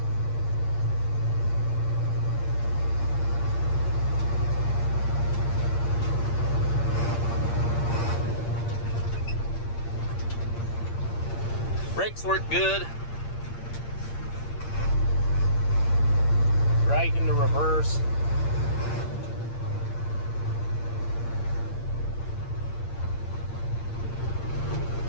Brakes work good. Right into reverse.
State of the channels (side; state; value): right; late; 8.7 ms